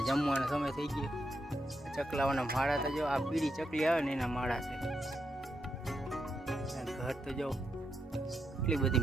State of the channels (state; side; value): normal; both; correlation 0.82